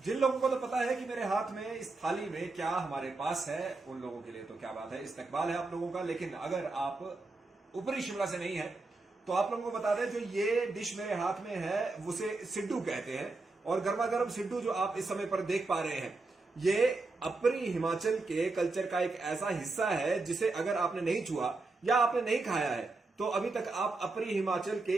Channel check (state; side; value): quieter; left; 3.5 dB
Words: लोगों को तो पता है कि मेरे हाथ में इस थाली में क्या हमारे पास है, उन लोगों के लिए तो क्या बात है, इस्तकबाल है आप लोगों का। लेकिन अगर आप ऊपरी शिमला से नहीं है तो आप लोगों को बता दें, जो ये डिश मेरे हाथ में है उसे सिड्डू कहते हैं। और गर्मा गर्म सिड्डू जो आप इस समय पर देख पा रहे हैं, ये अपरी हिमाचल के कल्चर का एक ऐसा हिस्सा है जिसे अगर आपने नहीं छुआ या आपने नहीं खाया है तो अभी तक आप अपरी हिमाचल के